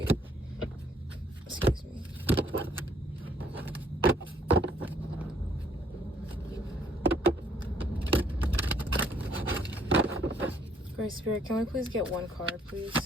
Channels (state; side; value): normal; both; correlation 0.64